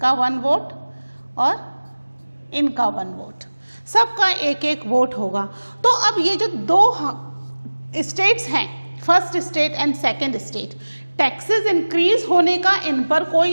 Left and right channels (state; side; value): inverted; both; correlation -1.00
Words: 1 वोट और इनका 1 वोट, सबका एक एक वोट होगा। तो अब ये जो 2 स्टेट्स हैं, first state and second state, taxes increase होने का इन पर